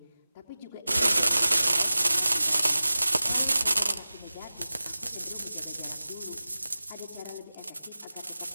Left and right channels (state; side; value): inverted; both; correlation -0.96